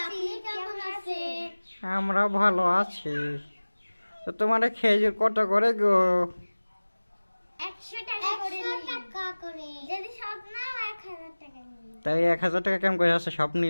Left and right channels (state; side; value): inverted; both; correlation -1.00